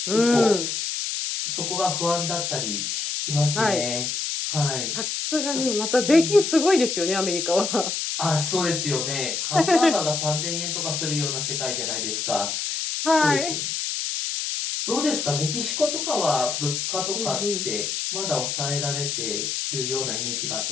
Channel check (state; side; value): noise; left; hiss, 2 dB below the sound